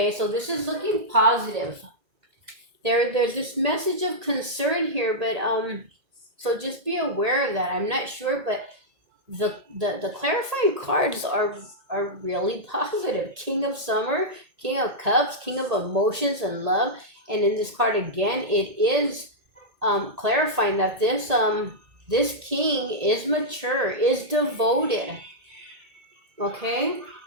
so this is looking positive. There's this message of concern here, but so just be aware of that. I'm not sure, but the clarifying cards are really positive. King of Summer, King of Cups, King of Emotions and Love, and in this card again, it is clarifying that this king is mature, is devoted. Okay.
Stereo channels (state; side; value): late; left; 1.8 ms